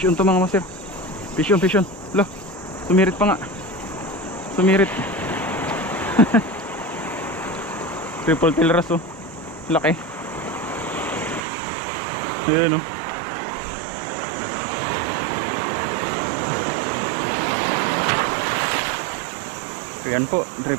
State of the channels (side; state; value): left; drops out; at 11.4 s